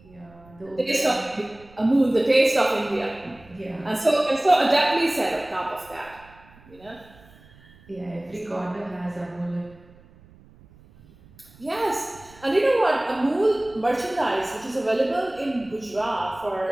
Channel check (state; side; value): noise; right; rumble, 25 dB below the sound